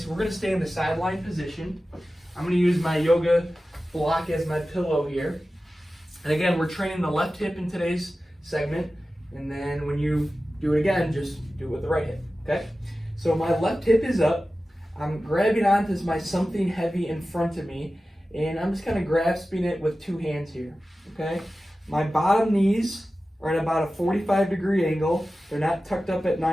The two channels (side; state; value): both; normal; correlation 0.95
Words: we're going to stay in the sideline position. I'm going to use my yoga block as my pillow here. And again, we're training the left hip in today's segment. And then when you do it again, just do it with the right hip, okay? So my left hip is up. I'm grabbing onto my something heavy in front of me, and I'm just kind of grasping it with 2 hands here, okay? My bottom knees are at about a 45-degree angle. They're not tucked up at